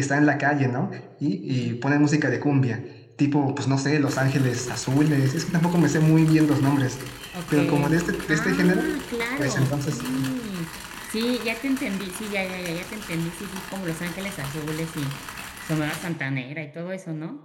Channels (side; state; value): both; identical; correlation 1.00